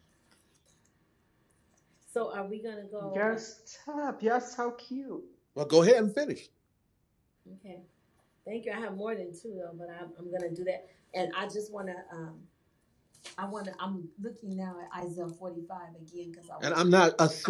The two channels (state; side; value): identical; both; correlation 1.00